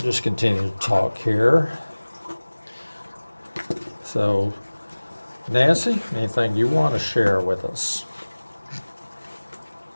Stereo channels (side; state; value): both; inverted; correlation -1.00